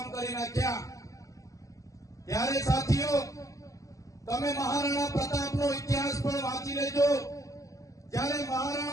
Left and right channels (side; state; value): right; late; 0.16 ms